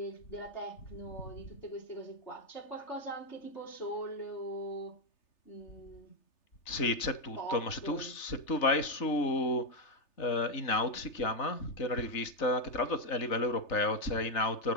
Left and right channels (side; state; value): right; late; 3.3 ms